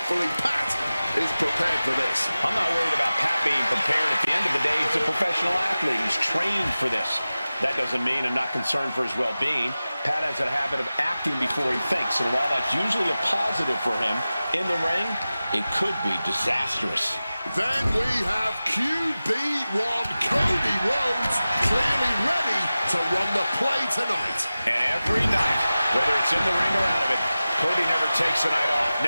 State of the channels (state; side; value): inverted; both; correlation -0.96